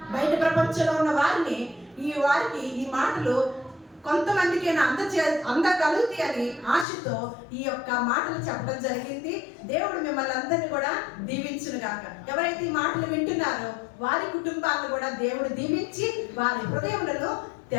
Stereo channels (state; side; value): drops out; right; at 6.9 s